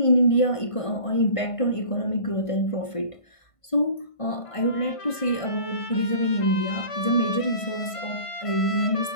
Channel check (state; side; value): late; right; 1.5 ms